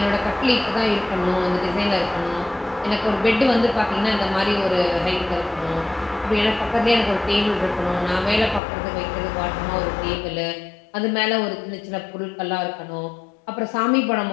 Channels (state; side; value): drops out; right; at 8.6 s